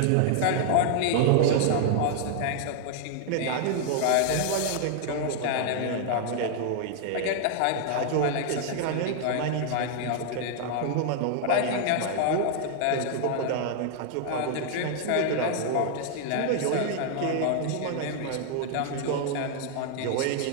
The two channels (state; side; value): different; both; correlation 0.00